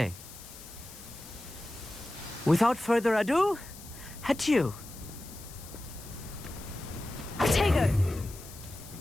Without further ado, adieu. Potato!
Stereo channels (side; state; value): left; noise; hiss, 16 dB below the sound